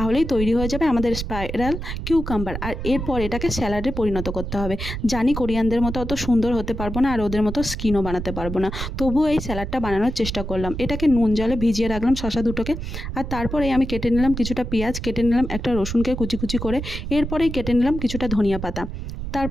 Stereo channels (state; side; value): noise; right; rumble, 6 dB below the sound